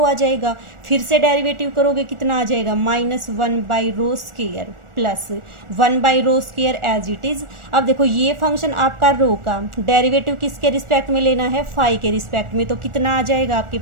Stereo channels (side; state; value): left; late; 1.4 ms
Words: आ जाएगा। फिर से डेरिवेटिव करोगे कितना आ जाएगा, -1 by rho square plus 1 by rho square as it is. अब देखो ये फंक्शन आपका रो का डेरिवेटिव किसके रिस्पेक्ट में लेना है, फाई के रिस्पेक्ट में, तो कितना आ जाएगा आपके